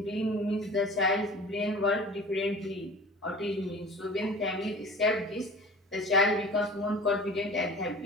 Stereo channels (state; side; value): normal; both; correlation 0.40